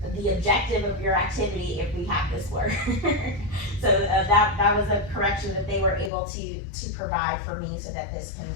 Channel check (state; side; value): drops out; right; at 6.1 s